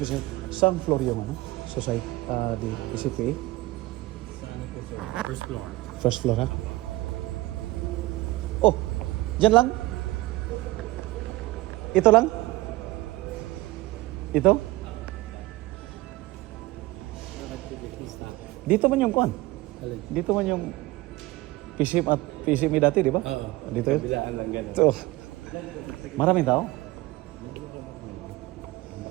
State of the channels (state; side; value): quieter; left; 19.5 dB